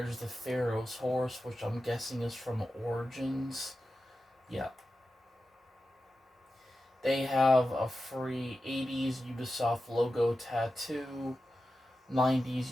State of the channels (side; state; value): both; normal; correlation 0.92